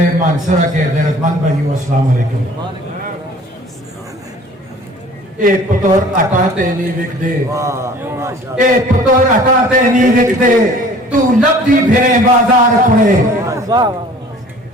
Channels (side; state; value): both; normal; correlation 0.49